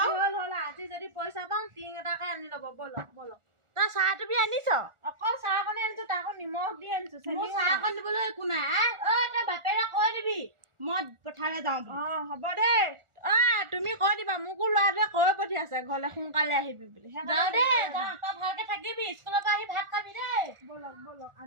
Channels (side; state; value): left; late; 1.4 ms